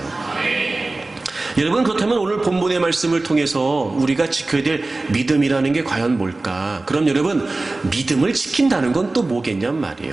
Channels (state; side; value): quieter; left; 3.1 dB